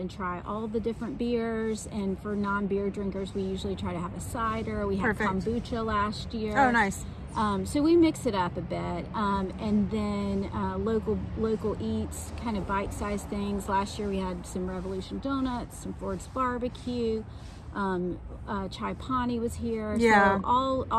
try all the different beers. And for non-beer drinkers, we usually try to have a cider. We had kombucha last year. Oh, nice. So we mix it up a bit, and then local eats, kind of bite-sized things. Last year we had some Revolution Donuts, some Ford's Barbecue, Chai Pani was here. Yeah. So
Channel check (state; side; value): identical; both; correlation 1.00